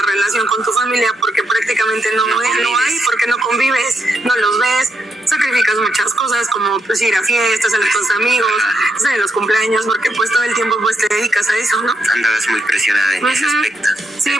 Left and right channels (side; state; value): both; normal; correlation 0.81